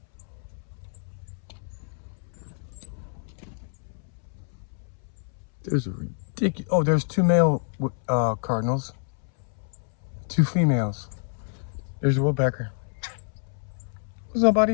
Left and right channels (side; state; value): right; silent; 60 dB below the other